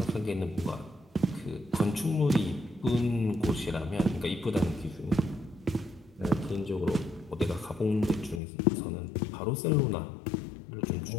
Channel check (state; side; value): drops out; right; at 8.4 s